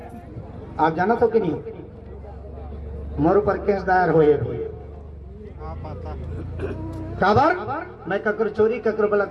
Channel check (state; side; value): identical; both; correlation 1.00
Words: आप जाना तो कि नहीं मोर ऊपर केस दायर हुए काबर मैं ककर चोरी ककर